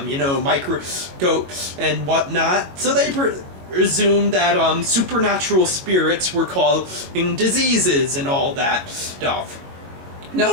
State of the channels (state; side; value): late; left; 22 ms